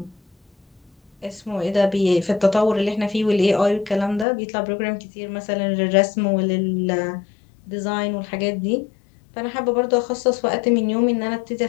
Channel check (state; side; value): drops out; right; at 4.2 s